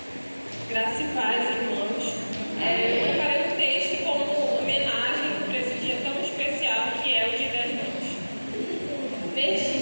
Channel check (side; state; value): both; inverted; correlation -1.00